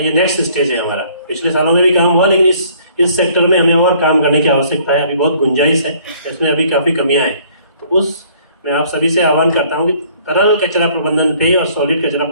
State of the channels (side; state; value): both; inverted; correlation -0.59